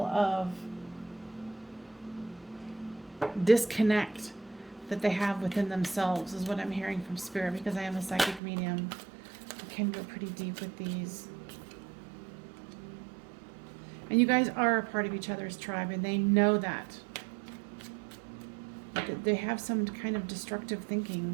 of disconnect that they have within themselves, is what I'm hearing from Spirit, because I am a psychic medium. I can go pretty deep with these. And you guys are a part of each other's tribe, and they know that. They have some kind of destructive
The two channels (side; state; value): left; drops out; at 8.4 s